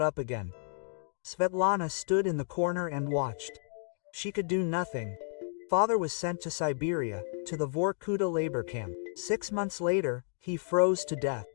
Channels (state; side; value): silent; right; digital silence